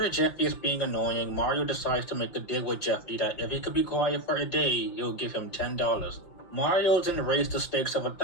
Jeffy is being annoying, Mario decides to make a deal with Jeffy that if he could be quiet for a day, he'll give him $10. Mario then raised the stakes of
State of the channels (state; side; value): late; right; 5.8 ms